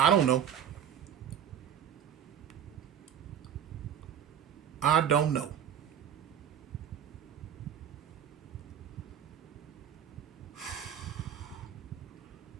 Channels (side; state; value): left; quieter; 9.0 dB